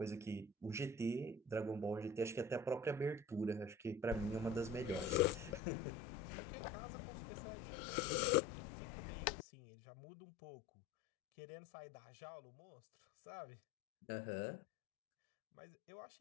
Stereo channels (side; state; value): right; drops out; at 5.6 s